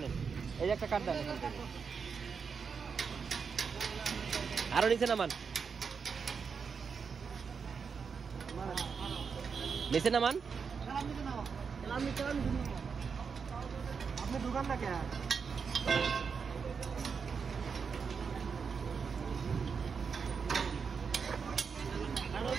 এই যে একটা কাঠ দেন, আরো নিচে নামান, নিচে নামান। আপনি দোকানটা কে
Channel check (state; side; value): quieter; left; 5.8 dB